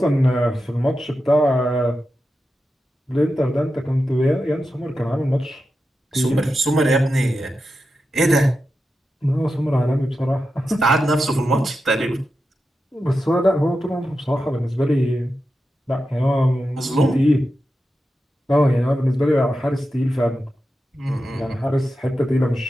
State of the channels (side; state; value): both; normal; correlation 0.90